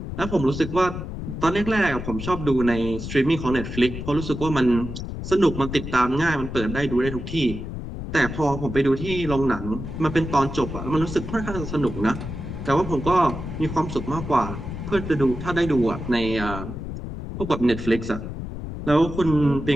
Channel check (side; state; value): left; noise; rumble, 7 dB below the sound